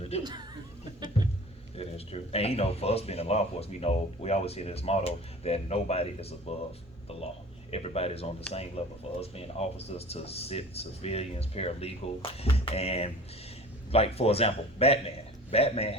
to do. It is true. And for us being in law enforcement, we always hear this motto that nobody is above the law. Everybody's on the same level. For us being officers to civilians, paralegal, and like, for example, Batman. Batman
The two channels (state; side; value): normal; both; correlation 0.42